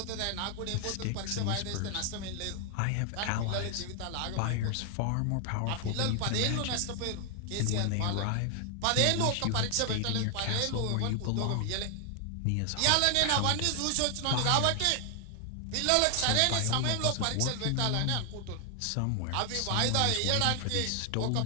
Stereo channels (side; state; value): both; different; correlation 0.00